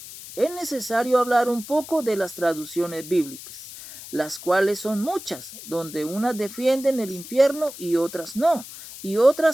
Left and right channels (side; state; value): left; noise; hiss, 14 dB below the sound